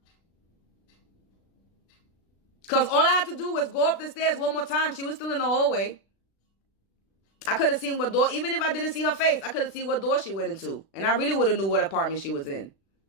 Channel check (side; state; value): right; late; 36 ms